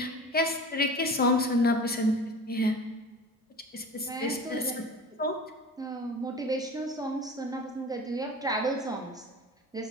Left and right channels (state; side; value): normal; both; correlation 0.36